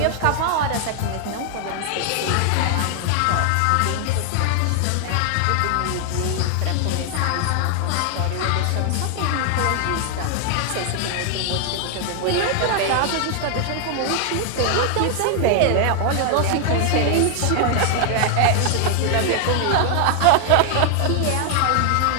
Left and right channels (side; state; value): both; different; correlation 0.00